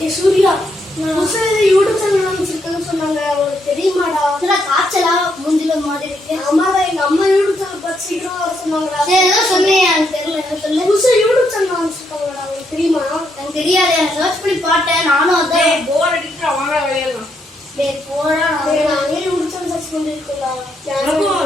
Surya YouTube channel ஆரம்பிச்சிருக்கேன்னு சொன்னாங்க, அவங்களுக்கு தெரியுமாடா? காய்ச்சலா மூஞ்சில மாதிரி இருக்கு. ஆமாடா, எங்க அம்மா யூடியூப் சேனல் பார்த்து சீக்கிரம் வர சொன்னாங்கடா. ஏதோ சொன்னேன், எனக்கு தெரியல. என்ன சொல்ல? புதுசா யூடியூப் சேனல் ஆரம்பிச்சிருக்காங்கடா, உங்களுக்கு தெரியுமா? எனக்கு தெரியாது, சர்ச் பண்ணி பார்த்தேன். நானும் அதான் போர் அடிக்கிற வாங்க விளையாடலாம். டேய் போடா, நானே யூடியூப் சேனல் சர்ச் பண்ணிருக்கேன்டா.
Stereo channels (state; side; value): normal; both; correlation 0.77